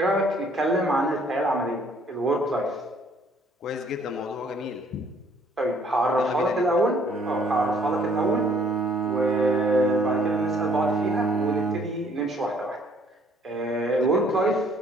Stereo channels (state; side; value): normal; both; correlation 0.61